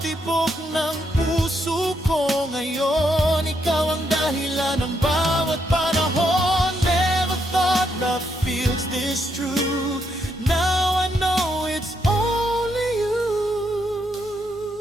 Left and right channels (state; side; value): normal; both; correlation 0.78